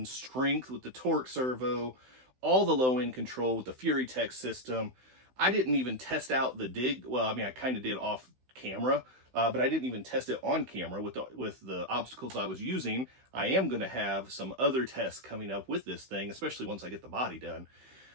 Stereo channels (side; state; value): left; late; 16 ms